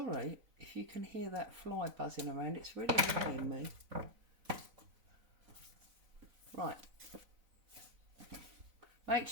if you can hear that fly buzzing around, it's really annoying me. Right. Make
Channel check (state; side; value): late; left; 4.0 ms